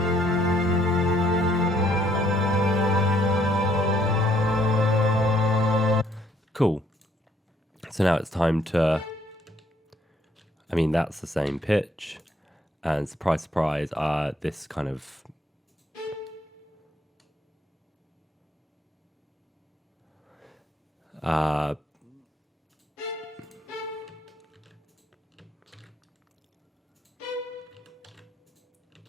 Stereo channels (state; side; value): normal; both; correlation 0.67